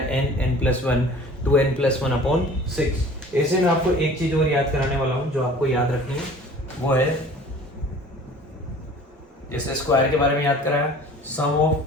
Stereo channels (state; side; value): normal; both; correlation 0.46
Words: n+1 2n+1/6। ऐसे में आपको एक चीज और याद कराने वाला हूँ जो आपको याद रखनी है, वो है जैसे स्क्वायर के बारे में याद कराया, sum of